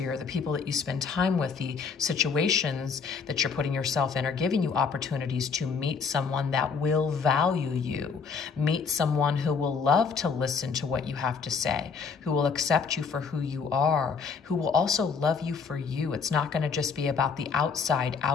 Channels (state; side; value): quieter; right; 5.6 dB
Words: the people that you spend time with, the situations that you're putting yourself in are giving you opportunities to meet someone that will value you, meet someone who will love to listen to what you have to say, who will accept you for who you are, who will also love you for you. It's not going to just be about the